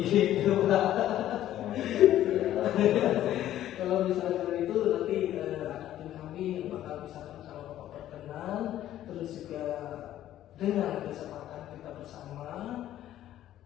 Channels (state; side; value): quieter; right; 12.7 dB